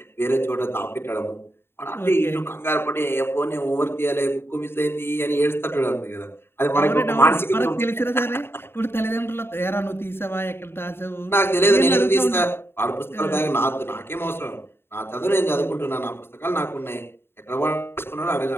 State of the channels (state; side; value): late; right; 0.11 ms